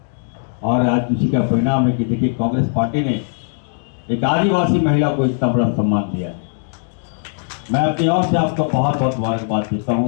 और आज उसी का परिणाम है कि देखिए कांग्रेस पार्टी ने एक आदिवासी महिला को इतना बड़ा सम्मान दिया है। मैं अपनी ओर से आपको बहुत बहुत मुबारकबाद देता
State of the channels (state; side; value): silent; right; digital silence